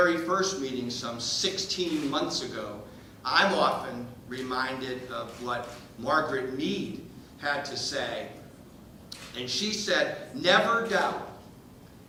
first meeting some 16 months ago, I'm often reminded of what Margaret Mead had to say. And she said, "Never doubt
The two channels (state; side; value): identical; both; correlation 1.00